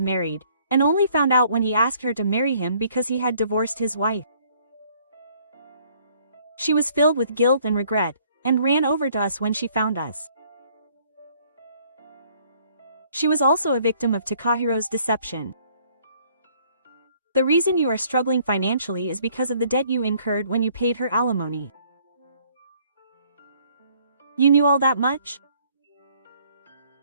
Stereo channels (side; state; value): both; inverted; correlation -0.62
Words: married, and only found out when he asked her to marry him because he had divorced his wife. She was filled with guilt and regret, and ran over to us when she found us. She was also a victim of Takahiro's deception. The reason you are struggling financially is because of the debt you incurred when you paid her alimony. You knew all that much?